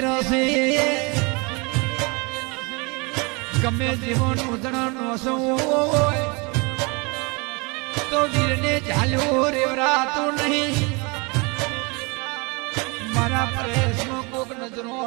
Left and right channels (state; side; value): quieter; left; 29.1 dB